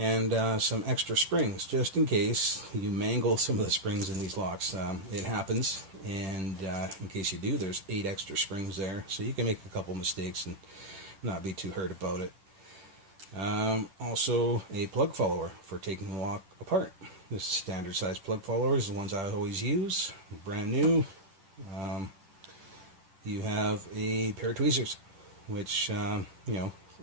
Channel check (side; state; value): left; late; 10 ms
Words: some extra springs just in case you mangle some of the springs in these locks. It happens, and in case you do, there's 8 extra springs there, so you can make a couple mistakes and not be too hurt about it. Also a plug follower for taking the lock apart. This standard size plug follower is the ones I always use, brand new. You have a pair of tweezers, which you know,